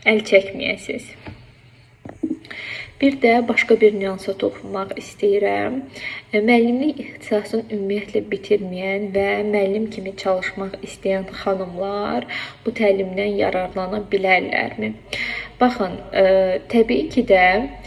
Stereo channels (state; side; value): identical; both; correlation 1.00